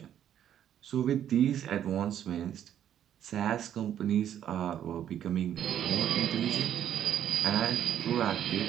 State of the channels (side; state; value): left; quieter; 10.2 dB